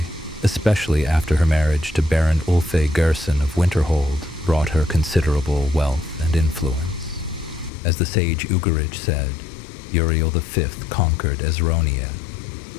especially after her marriage to Baron Ulfe Gerson of Winterhold brought her considerable wealth and influence. As the sage Ugarij said, Uriel V conquered Esronia,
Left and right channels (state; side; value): drops out; right; at 7.7 s